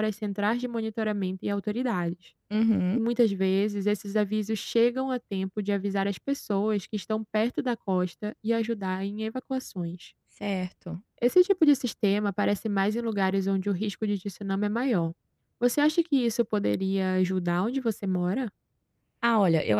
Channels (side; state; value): both; identical; correlation 1.00